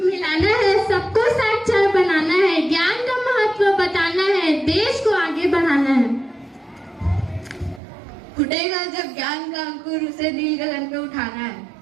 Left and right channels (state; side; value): drops out; left; at 7.8 s